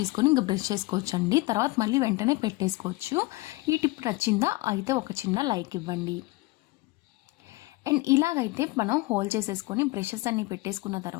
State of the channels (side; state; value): right; quieter; 21.6 dB